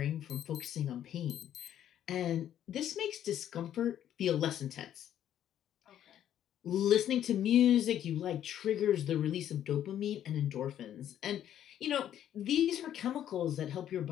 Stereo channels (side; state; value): right; quieter; 10.8 dB